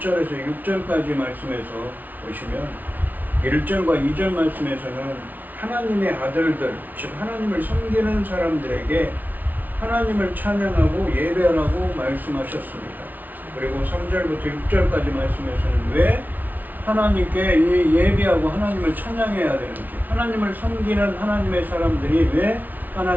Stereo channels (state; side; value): late; left; 0.081 ms